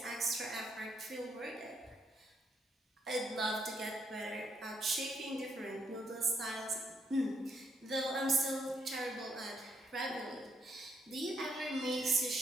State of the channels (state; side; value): normal; both; correlation 0.74